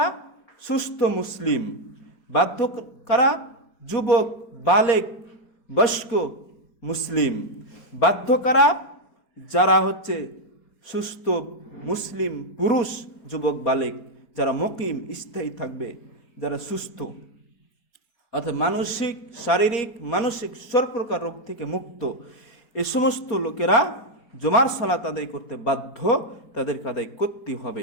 সুস্থ মুসলিম। বাধ্য কারা? যুবক, বালেক, বয়স্ক মুসলিম। বাধ্য কারা? যারা হচ্ছে সুস্থ মুসলিম পুরুষ, যুবক, বালেক, যারা মুকিম, স্থায়ী থাকবে, যারা সুস্থ, অর্থাৎ মানসিক, শারীরিক, মানসিক সব প্রকার রোগ থেকে মুক্ত, এই সমস্ত লোকেরা জুমার সালাত আদায় করতে বাধ্য, তাদেরকে আদায় করতে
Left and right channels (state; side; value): late; right; 4.2 ms